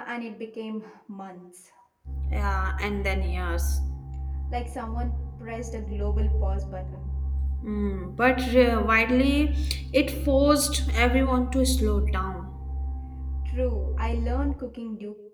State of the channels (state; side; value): identical; both; correlation 1.00